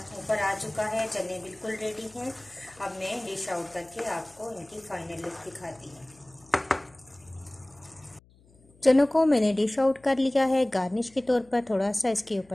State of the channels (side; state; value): left; noise; hum, 29 dB below the sound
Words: ऊपर आ चुका है, चने बिल्कुल रेडी हैं। अब मैं डिश आउट करके आपको इनकी फाइनल लुक दिखाती हूँ। चनों को मैंने डिश आउट कर लिया है। गार्निश के तौर पर थोड़ा सा इसके